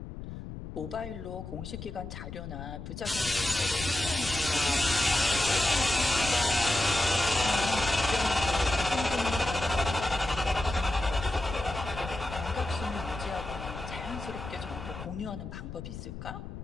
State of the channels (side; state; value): left; noise; rumble, 10 dB below the sound